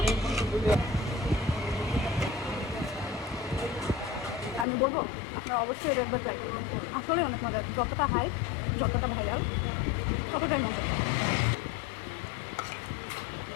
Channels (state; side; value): drops out; right; at 4.7 s